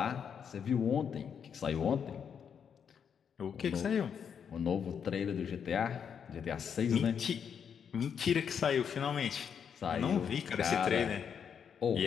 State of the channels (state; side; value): quieter; right; 7.4 dB